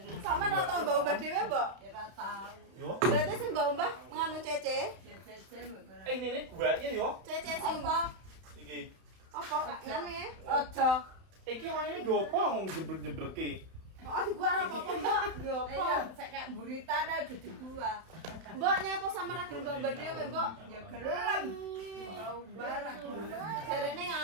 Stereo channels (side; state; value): left; late; 31 ms